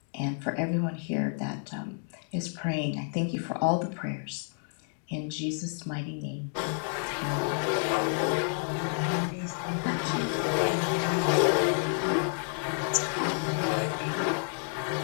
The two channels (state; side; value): silent; right; 58 dB below the other